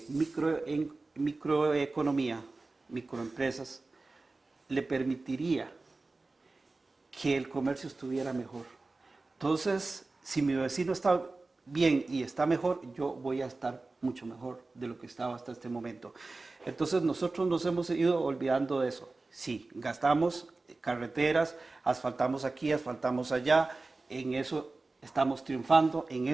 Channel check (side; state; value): left; quieter; 3.4 dB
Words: microeconomía, microempresas, le permitiría que el comercio estuviera mejor. Entonces, si mi vecino está bien y está mejor, yo voy a estar mucho mejor de lo que estaba hasta este momento. Entonces, nosotros nos hemos ido olvidando de eso. Sí, gastamos carreteras, asfaltamos aquí, asfaltamos allá, en eso estamos triunfando, en